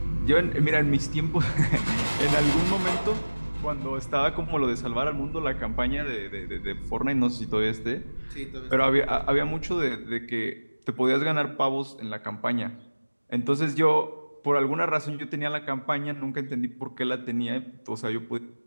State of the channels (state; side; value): inverted; both; correlation -1.00